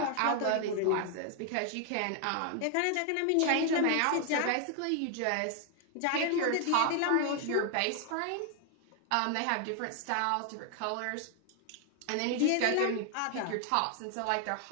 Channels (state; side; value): different; both; correlation 0.00